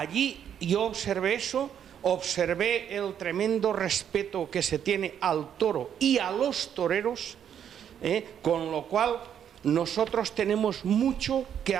yo observé eso, observé el tremendo respeto que se tiene al toro y a los toreros, con lo cual nosotros tenemos mucho que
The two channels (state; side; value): quieter; left; 9.0 dB